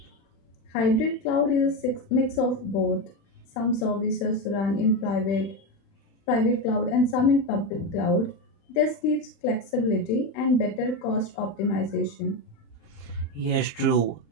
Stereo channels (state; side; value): late; right; 36 ms